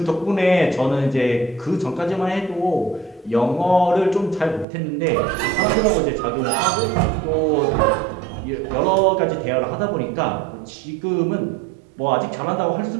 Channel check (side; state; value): left; drops out; at 4.7 s